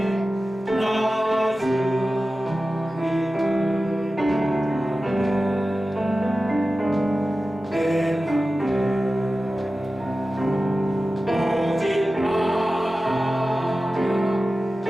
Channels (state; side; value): normal; both; correlation 0.95